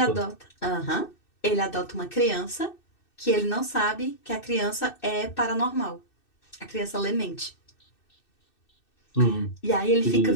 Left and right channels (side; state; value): right; late; 2.6 ms